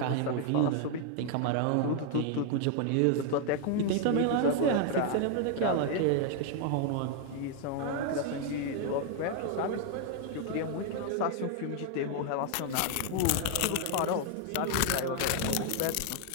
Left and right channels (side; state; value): both; different; correlation 0.00